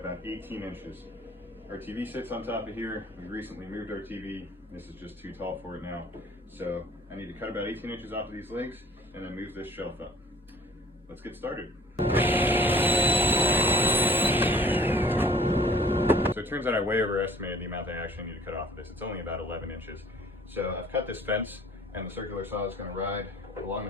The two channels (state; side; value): normal; both; correlation 0.52